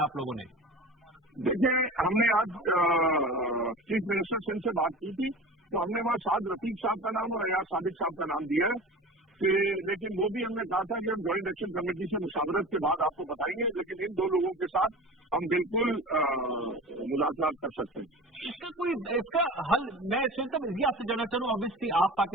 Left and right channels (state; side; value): normal; both; correlation 0.35